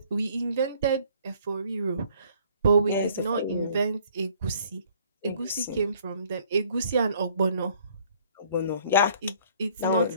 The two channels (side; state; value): both; inverted; correlation -0.59